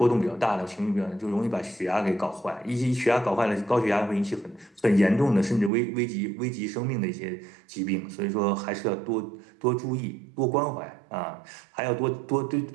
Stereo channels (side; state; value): left; drops out; at 5.7 s